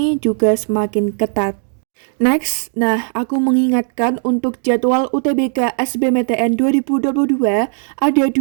juga semakin ketat. Next, aku mengingatkan untuk jadwal UTBK SBMPTN 2022 ada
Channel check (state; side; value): silent; left; 66 dB below the other